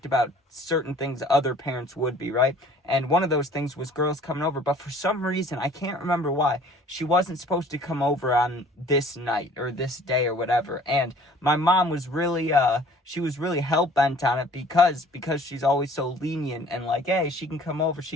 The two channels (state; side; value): normal; both; correlation 0.52